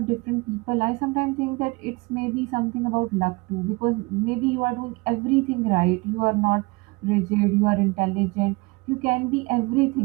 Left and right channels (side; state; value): left; quieter; 25.5 dB